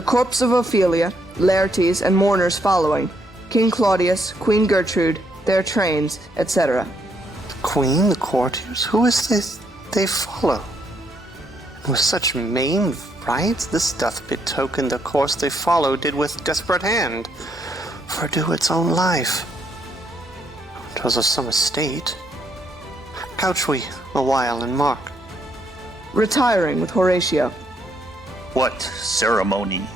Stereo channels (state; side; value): normal; both; correlation 0.73